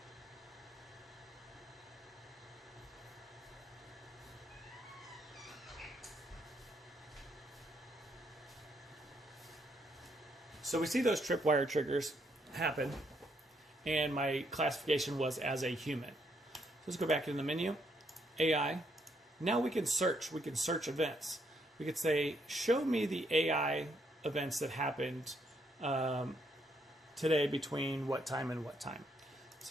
So we see those tripwire triggers happen, and my classification was as a human. So let's go back in the menu, AI. Now we can search. We can search events. We could say, show me the AI events that happened today between what time and what time.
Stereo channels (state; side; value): normal; both; correlation 0.74